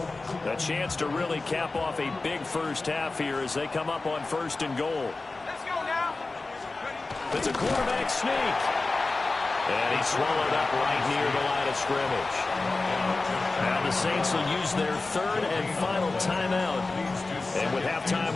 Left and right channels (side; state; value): right; quieter; 3.5 dB